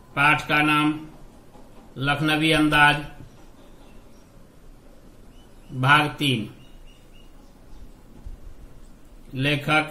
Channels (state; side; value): identical; both; correlation 1.00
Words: पाठ का नाम लखनवी अंदाज, भाग 3। लेखक